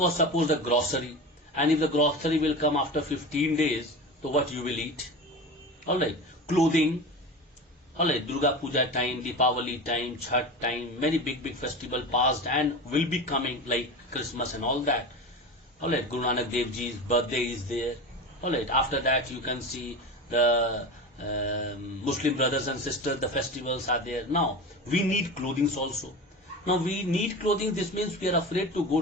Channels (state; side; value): normal; both; correlation 0.28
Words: suppose the grocery, and if the grocery will come after 15 days, so what you will eat? Alright, clothing. Alright, Durga Puja time, Deepavali time, Chhat time, many big festival passed and will be coming, like Christmas and all that. Alright, Guru Nanak Dev Ji's birthday is there. Alright, after that you can see the Muslim brothers and sisters, the festivals are there. Now, we need clothing also. Now we need clothing, this means we are afraid to go